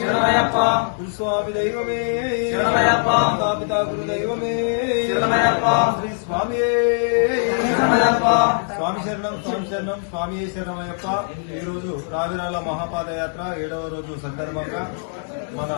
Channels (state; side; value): silent; right; digital silence